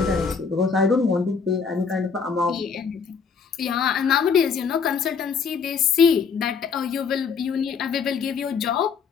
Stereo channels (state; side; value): quieter; right; 5.8 dB